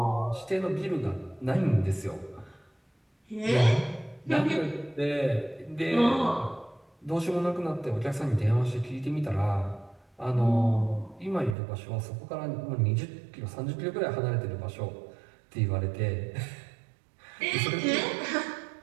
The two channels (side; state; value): left; drops out; at 11.6 s